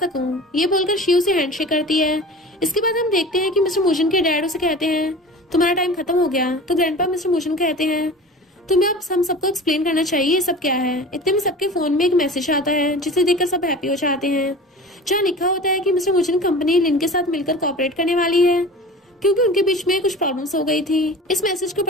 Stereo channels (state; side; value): normal; both; correlation 0.37